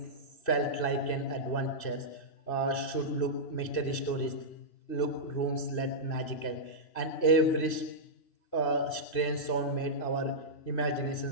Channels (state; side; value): late; right; 2.6 ms